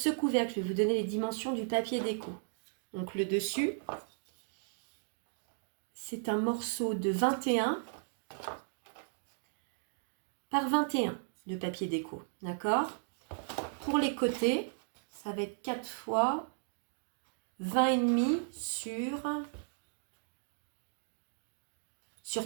couvercle, je vais vous donner les dimensions du papier déco. Donc, le dessus, c'est un morceau de 21 par 21 de papier déco. D'accord? Pour les côtés, ça va être 4 fois 20,5 sur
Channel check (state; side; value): silent; left; digital silence